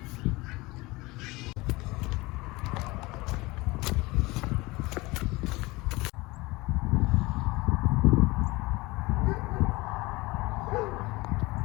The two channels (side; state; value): right; quieter; 22.4 dB